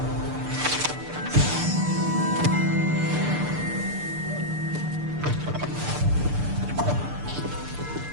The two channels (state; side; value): late; left; 6.8 ms